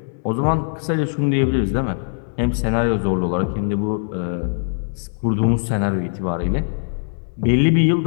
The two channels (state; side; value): silent; right; digital silence